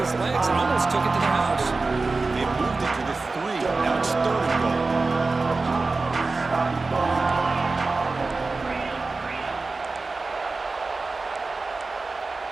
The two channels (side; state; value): left; quieter; 3.7 dB